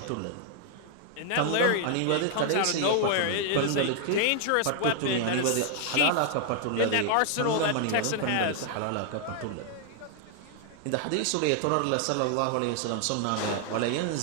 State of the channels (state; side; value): different; both; correlation 0.00